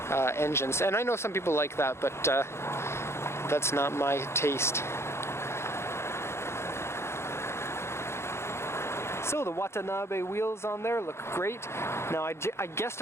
engines, and I know some people like that, but that's not my taste. So the Watanabe wheels on there look great. Now I guessed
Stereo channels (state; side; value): late; right; 0.13 ms